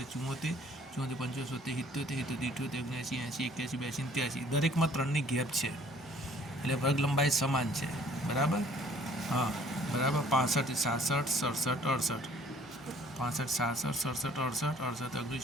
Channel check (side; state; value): both; normal; correlation 0.57